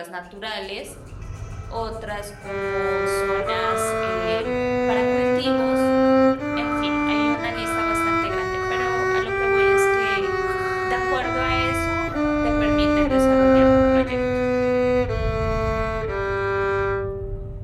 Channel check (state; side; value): identical; both; correlation 1.00